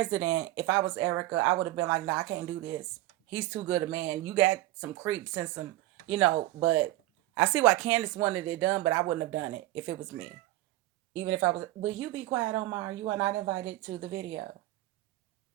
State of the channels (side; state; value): left; quieter; 16.7 dB